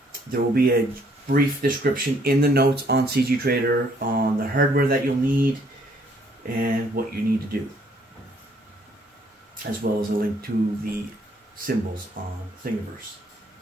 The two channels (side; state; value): both; normal; correlation 0.65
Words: There will be a brief description in the notes on CG Trader on the hardware that you'll need and what you need to do, as well as a link to the symbols on Thingiverse.